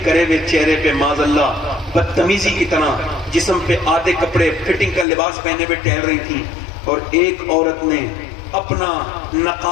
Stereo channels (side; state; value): right; drops out; at 5.1 s